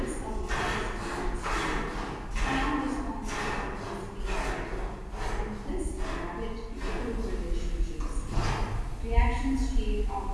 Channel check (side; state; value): both; identical; correlation 1.00